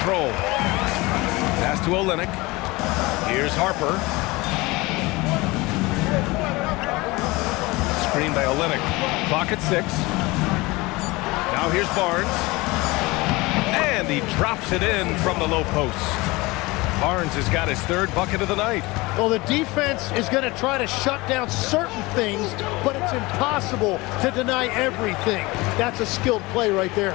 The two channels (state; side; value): quieter; right; 22.5 dB